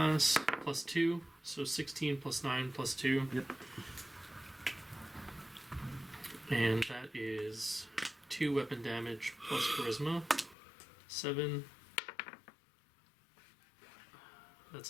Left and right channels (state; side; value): drops out; right; at 10.6 s